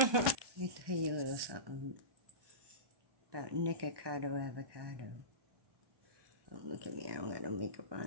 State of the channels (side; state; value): left; late; 1.2 ms